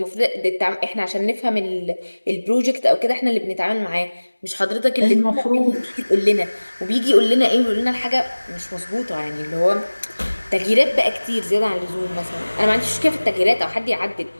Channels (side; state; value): both; inverted; correlation -1.00